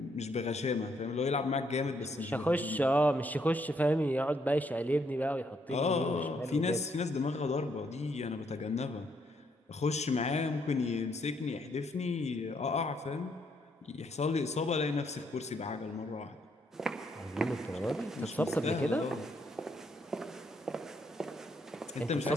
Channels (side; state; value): both; normal; correlation 0.73